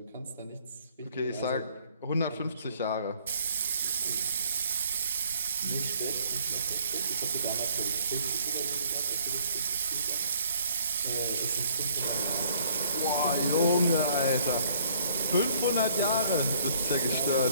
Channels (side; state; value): both; inverted; correlation -0.61